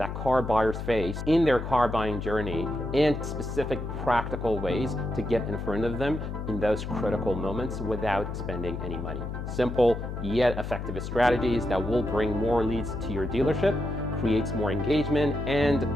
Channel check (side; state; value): left; noise; hum, 6 dB below the sound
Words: car buyers face in their car buying journey and specific practical ways to get in front of them in those critical moments without spending any money. Simple yet effective strategies that will bring more leads to your dealership, creates more engagement, and